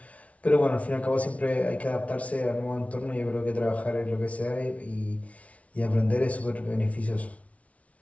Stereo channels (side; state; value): right; late; 0.066 ms